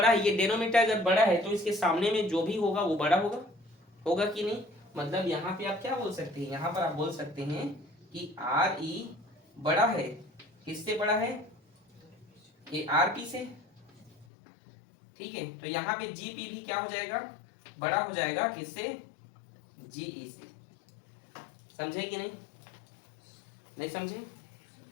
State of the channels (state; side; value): drops out; right; at 14.2 s